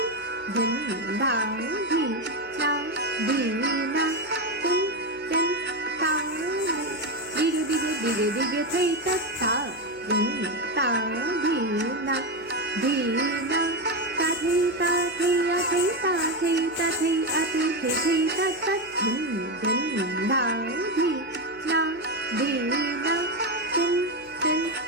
din ta dhi na tin tin ta đi thầy tất ta din ta dhi na ta thi a thi ta thi a thi tất tất din ta dhi na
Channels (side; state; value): left; noise; hum, 28 dB below the sound